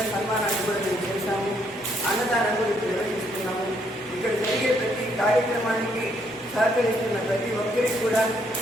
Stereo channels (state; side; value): normal; both; correlation 0.71